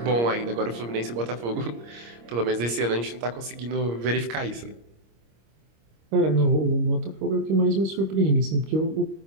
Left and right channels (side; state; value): left; late; 26 ms